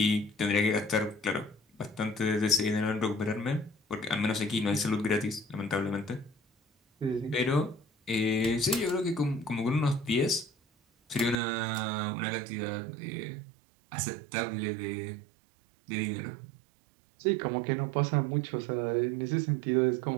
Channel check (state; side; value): drops out; left; at 11.4 s